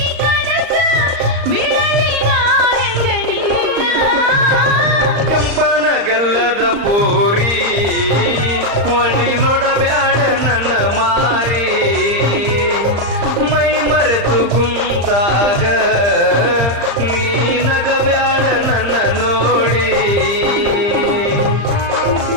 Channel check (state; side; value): late; left; 35 ms